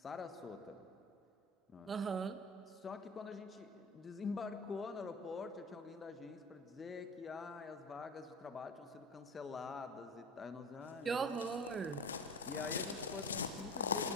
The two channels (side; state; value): both; normal; correlation 0.33